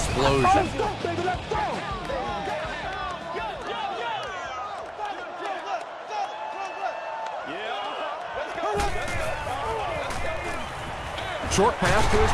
Short pass to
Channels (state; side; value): identical; both; correlation 1.00